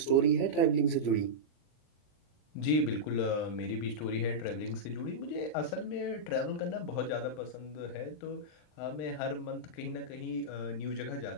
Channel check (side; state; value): right; late; 39 ms